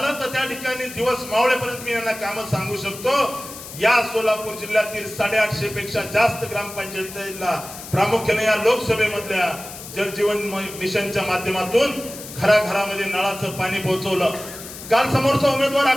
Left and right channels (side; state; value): left; noise; hiss, 13 dB below the sound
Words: तर त्या ठिकाणी दिवस मावळेपर्यंत मी यांना काम सांगू शकतो। या सोलापूर जिल्ह्यातील 850 पेक्षा जास्त ग्रामपंचायतीला प्रामुख्याने या लोकसभेमधल्या जल जीवन मिशनच्या माध्यमातून घराघरामध्ये नळाचं पाणी पोहोचवलं। काल समोरचा उमेदवार